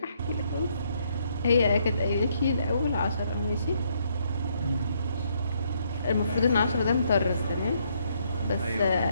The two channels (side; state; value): both; inverted; correlation -0.72